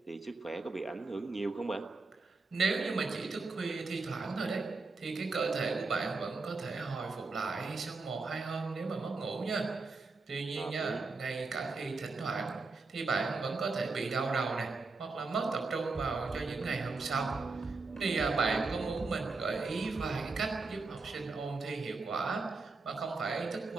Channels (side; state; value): left; quieter; 3.9 dB